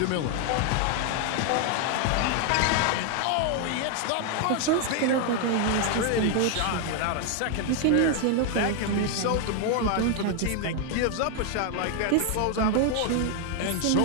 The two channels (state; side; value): different; both; correlation 0.00